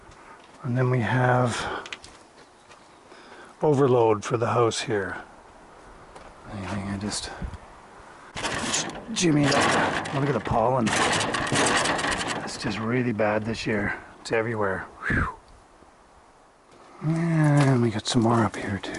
and then we have overload for the house here. I just jimmy it up. Look at the pollen. It's just really bad this year. It's everywhere. Whew. And we got some more up here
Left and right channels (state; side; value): identical; both; correlation 1.00